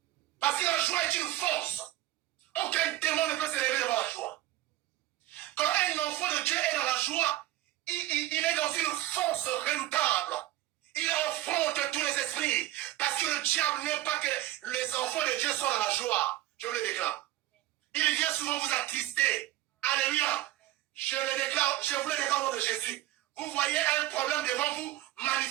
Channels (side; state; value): left; quieter; 15.2 dB